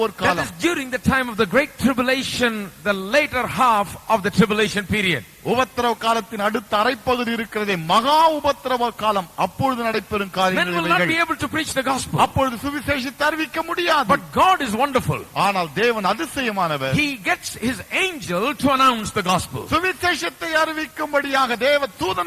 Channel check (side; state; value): both; identical; correlation 1.00